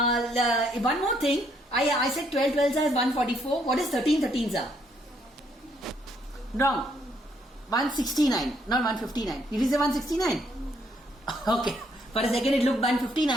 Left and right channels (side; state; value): both; normal; correlation 0.70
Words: more thing. I said 12 12s are 144. What is 13 13s are? Wrong. 169, not 159. Did you say 169? Okay. For a second it looked